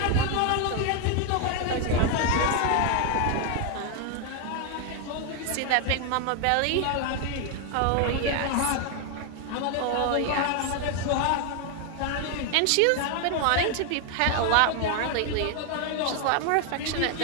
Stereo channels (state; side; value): different; both; correlation 0.01